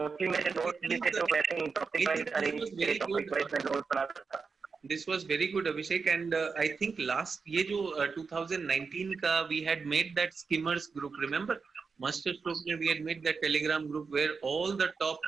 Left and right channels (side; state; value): left; quieter; 5.0 dB